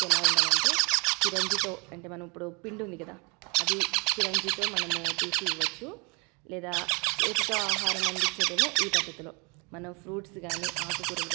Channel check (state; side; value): quieter; left; 31.3 dB